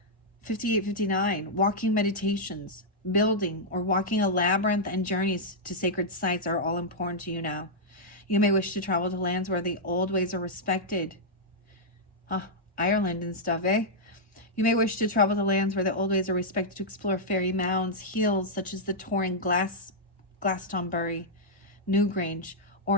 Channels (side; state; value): both; normal; correlation -0.07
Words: 5859, walking meditations, building or walking a labyrinth, and journeys to sacred sites are all important to you now. You may wish to travel to lands where the old ways are respected. Ireland and stuff, eh? You may wish to travel to lands where the old ways are respected to explore fairy mounds, hills such as the Torring Glastonbury, Newgrange,